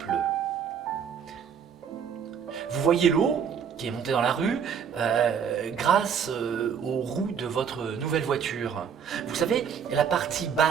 Vous voyez l'eau qui est montée dans la rue grâce aux roues de votre nouvelle voiture. Vous savez, la partie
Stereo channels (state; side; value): quieter; left; 7.3 dB